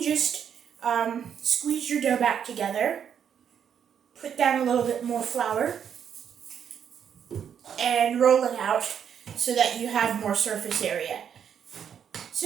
just squeeze your dough back together, put down a little bit more flour, and roll it out so that you have more surface area.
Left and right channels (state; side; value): quieter; left; 8.2 dB